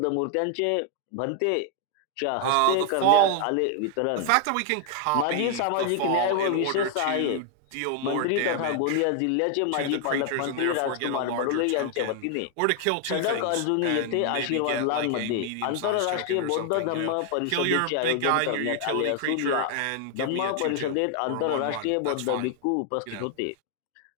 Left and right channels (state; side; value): different; both; correlation 0.00